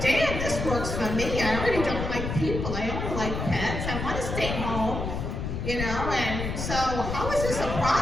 damn, this works for me. I already don't like people. I only like pets. I want to stay home. And so how is this a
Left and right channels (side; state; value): left; noise; rumble, 4 dB below the sound